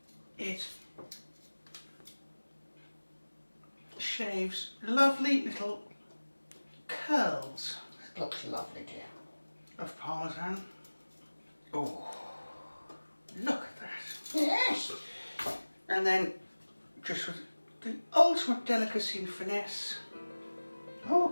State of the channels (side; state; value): both; inverted; correlation -1.00